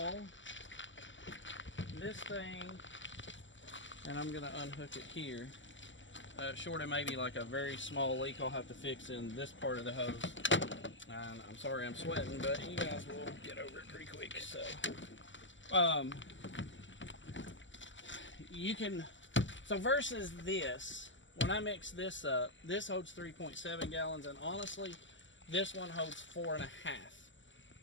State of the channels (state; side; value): late; right; 0.55 ms